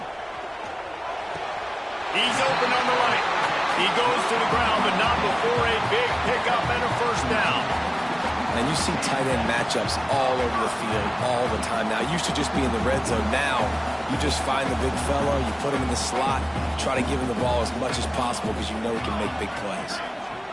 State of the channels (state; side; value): identical; both; correlation 1.00